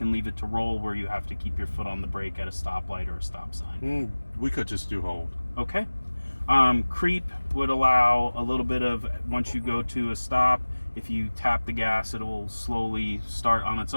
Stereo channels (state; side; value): inverted; both; correlation -1.00